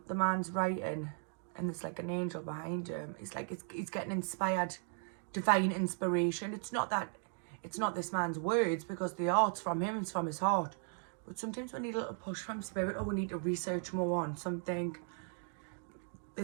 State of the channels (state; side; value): silent; left; 53 dB below the other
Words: man's writing, and there's like an angel behind him. It's like he's getting inspired, divine inspiration. It's not this man's words, because the art's from him, it's from his heart. But sometimes we need a little push from spirit, or we need to research more on something.